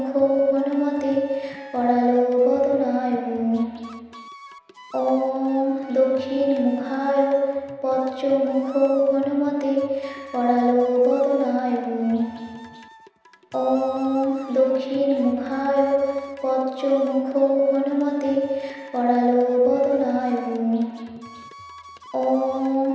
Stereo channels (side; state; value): both; identical; correlation 1.00